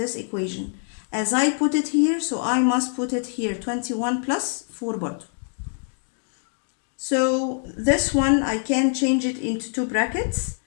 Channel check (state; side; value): silent; right; 62 dB below the other